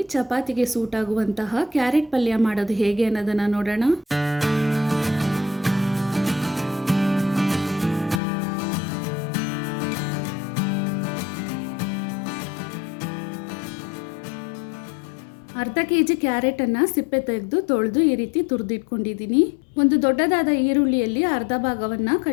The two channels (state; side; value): drops out; right; at 8.2 s